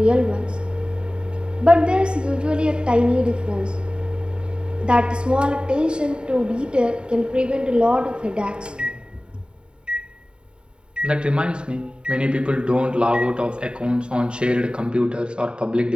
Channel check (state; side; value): late; left; 0.050 ms